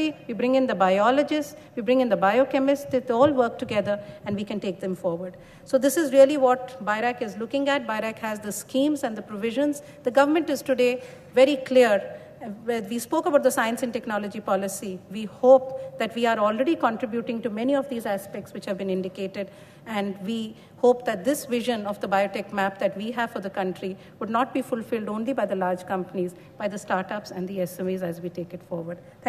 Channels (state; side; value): identical; both; correlation 1.00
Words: we bring in the biologists, we bring in the biochemists, they all work together and we can take them forward. So this is really what BIRAC is looking at. BIRAC has the schemes and the provisions. The government is today very clear. We spoke about the science and technology policy. We hope that we are already contributing to many of these aspects which have been indicated, and we hope that this vision of the biotech map that we have for the country would not be fulfilled only by the large companies, by the startups and the SMEs as we take it forward.